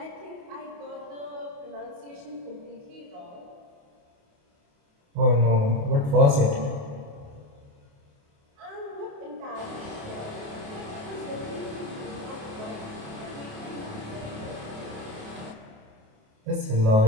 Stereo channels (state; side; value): late; left; 28 ms